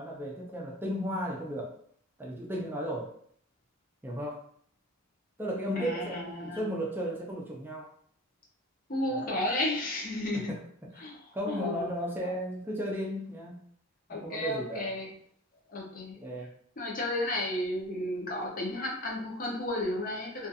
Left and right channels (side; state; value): both; normal; correlation 0.39